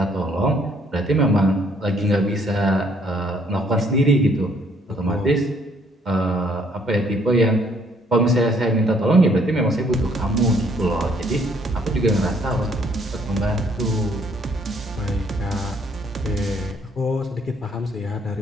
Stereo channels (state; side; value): normal; both; correlation 0.65